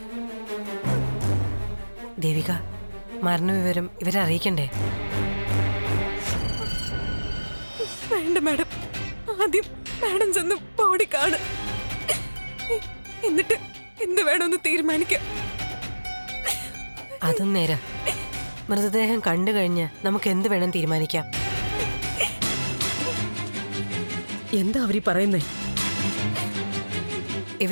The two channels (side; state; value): both; inverted; correlation -1.00